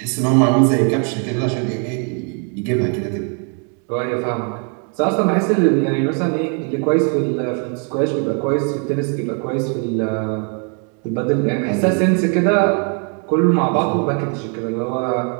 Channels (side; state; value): left; quieter; 40.0 dB